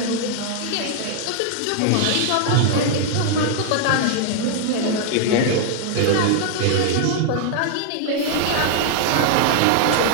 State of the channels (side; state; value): both; different; correlation 0.00